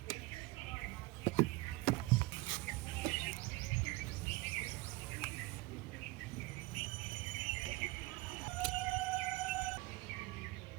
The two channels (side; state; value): left; quieter; 21.3 dB